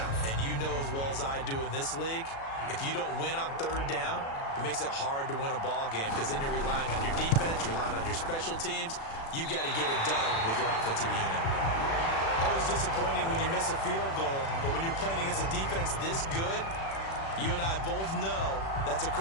And you know as well as I do in this league, if you don't win on third down, it makes it hard to win a ball game because then you're relying on your defense, you're relying on your special teams. You've got to get it done with your offensive unit. Always disappointing when you miss a field goal, but when you're playing against a defense this good, you and I both know that's a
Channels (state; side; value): late; right; 36 ms